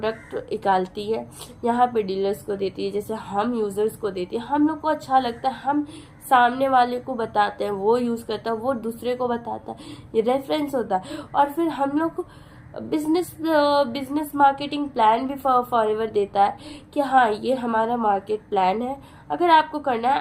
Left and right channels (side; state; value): both; identical; correlation 1.00